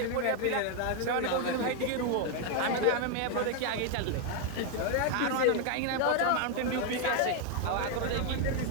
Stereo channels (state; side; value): different; both; correlation 0.00